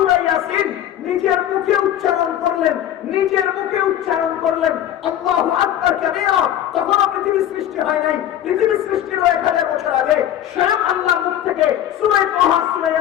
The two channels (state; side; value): quieter; right; 11.3 dB